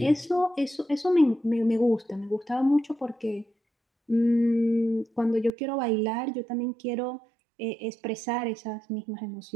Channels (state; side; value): drops out; left; at 5.5 s